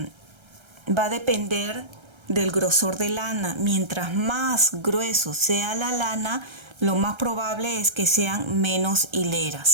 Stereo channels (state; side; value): late; left; 1.3 ms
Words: a depender del grosor de lana. Mientras más grueso sea la lana, lo más probable es que sean menos